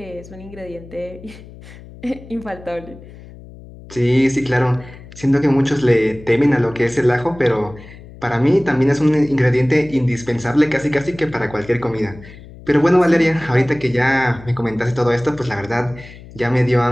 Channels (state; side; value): noise; left; hum, 18 dB below the sound